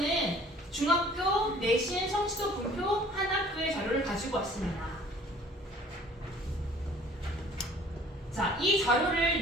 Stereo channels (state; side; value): normal; both; correlation 0.52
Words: 중학교 내신 성취도 분표 한 학교의 자료를 가지고 왔습니다. 자, 이 자료를